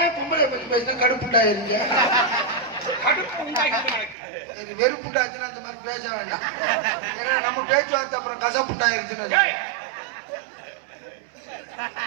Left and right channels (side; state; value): left; drops out; at 4.2 s